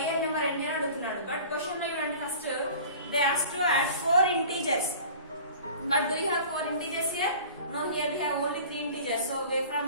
number ఎన్ని అని అడుగుతున్నాడు. బట్ క్వశ్చన్ లో ఇవ్వండి first they ask to add 4 integers. But do you have 4 integers here? No, here we have only 3 integers. So from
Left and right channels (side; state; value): both; inverted; correlation -0.43